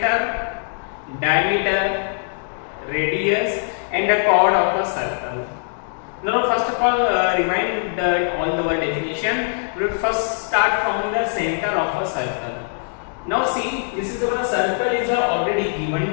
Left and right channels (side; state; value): right; silent; digital silence